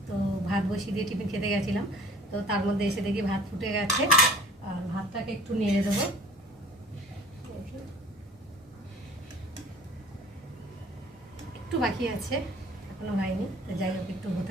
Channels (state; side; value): normal; both; correlation 0.48